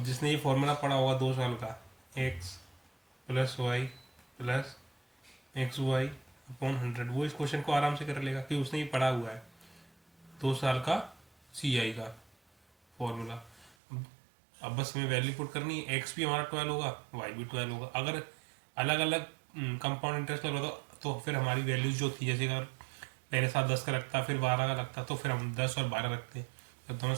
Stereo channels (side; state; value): left; drops out; at 13.8 s